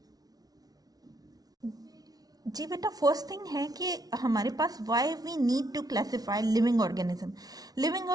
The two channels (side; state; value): left; late; 0.19 ms